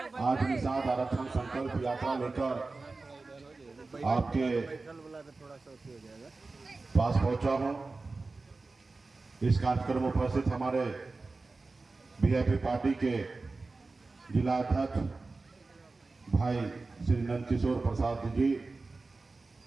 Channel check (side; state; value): left; quieter; 3.7 dB